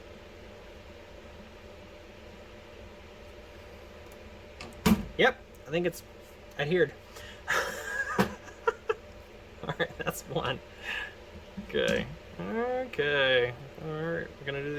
Yep, I think it's adhered. Alright, that's one. Okay. Okay. Alright, we're gonna do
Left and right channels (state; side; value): identical; both; correlation 1.00